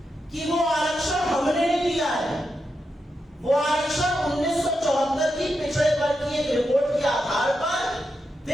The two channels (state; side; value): normal; both; correlation 0.86